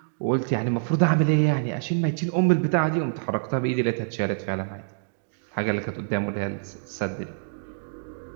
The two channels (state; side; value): silent; left; digital silence